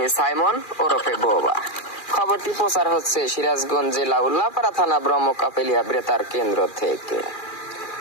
সাইমন ওরফে বোবা। খবরটি প্রচার হচ্ছে সিরাজগঞ্জ জেলা উল্লাপাড়া থানা ব্রহ্মকাপেলিয়া বেতার কেন্দ্র থেকে।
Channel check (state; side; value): late; right; 2.4 ms